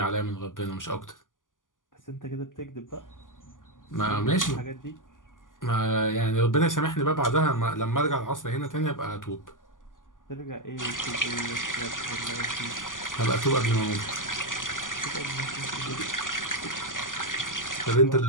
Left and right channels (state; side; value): late; right; 0.88 ms